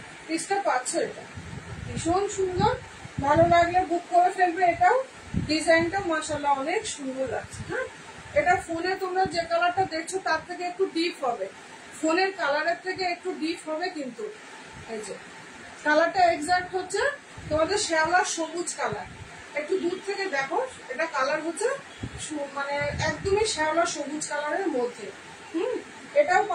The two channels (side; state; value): both; identical; correlation 1.00